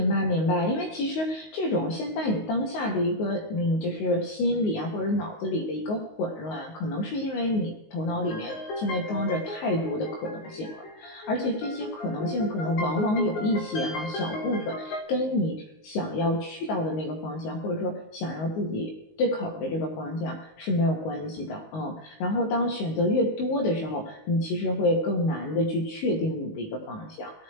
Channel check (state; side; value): late; right; 19 ms